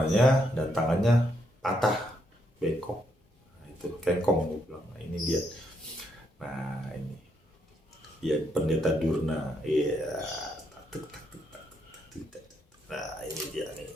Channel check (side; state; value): both; normal; correlation 0.76